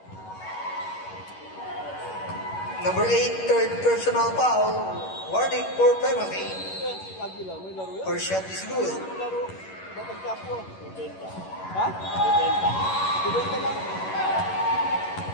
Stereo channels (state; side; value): late; right; 11 ms